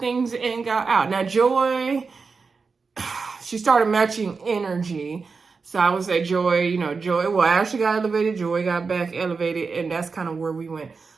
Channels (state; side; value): quieter; left; 4.8 dB